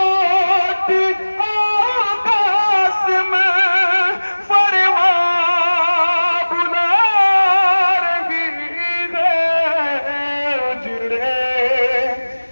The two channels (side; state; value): both; inverted; correlation -1.00